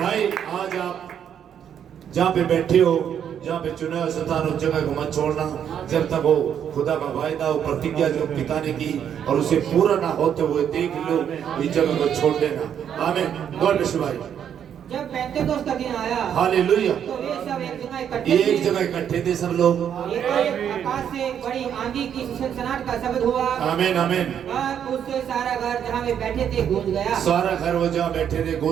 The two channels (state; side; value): quieter; left; 8.8 dB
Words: आज आप जहाँ पे बैठे हो, जहाँ पे चुना हुआ स्थान, उस जगह को मत छोड़ना जब तक वो खुदा का वायदा और प्रतिज्ञा जो पिता ने की और उसे पूरा ना होते हुए देख लो, इस जगह को छोड़ देना। आमीन। गॉड ब्लेस यू भाई। जब पेंतेकोस्त का दिन आया, हालेलुया। तो वे सब एक जगह इकट्ठे थे। एक जगह इकट्ठे थे सब लोग। एकाएक आकाश से बड़ी आंधी की सनसनाहट का शब्द हुआ, आमीन आमीन। और उससे सारा घर जहाँ वे बैठे थे गूंज गया। सारा घर वो जहाँ बैठे थे